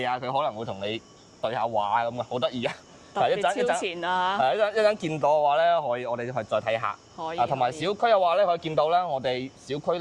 啊？佢可能會同你對下話咁啊，好得意啊！特別超前啊！一陣見到嘅話咧，可以我哋再睇下。可以。同埋小區嘅話咧，可以見到咧，我哋小區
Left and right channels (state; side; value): identical; both; correlation 1.00